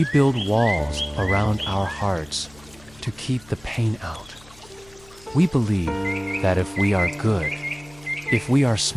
build walls around our hearts to keep the pain out. We believe that if we are good, if we are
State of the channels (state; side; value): noise; left; hum, 25 dB below the sound